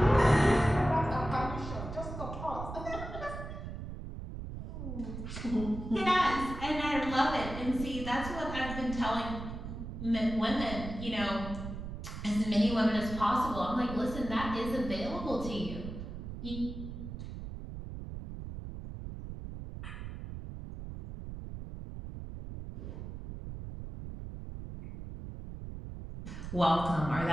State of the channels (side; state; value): right; noise; rumble, 8 dB below the sound